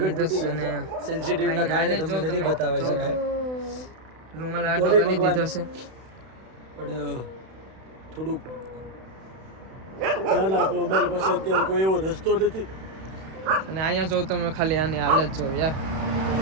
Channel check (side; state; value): left; late; 32 ms